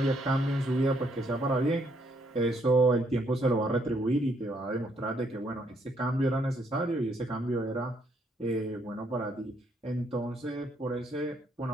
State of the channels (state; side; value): normal; both; correlation 0.71